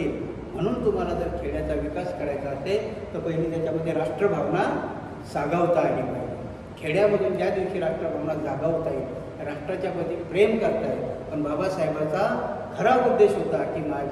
म्हणून तुम्हाला जर खेड्याचा विकास करायचा असेल तर पहिली त्याच्यामध्ये राष्ट्रभावना जागवता आली पाहिजे. खेड्यामधून ज्या दिवशी राष्ट्रभावना जागवता येईल, राष्ट्राच्या प्रती प्रेम करता येईल. पण बाबासाहेबांचा खरा उद्देश होता की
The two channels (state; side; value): identical; both; correlation 1.00